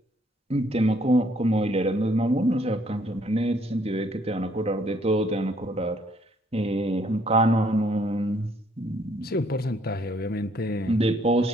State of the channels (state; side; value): normal; both; correlation 0.65